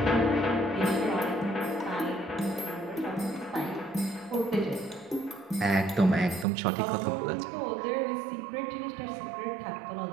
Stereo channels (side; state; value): left; drops out; at 6.5 s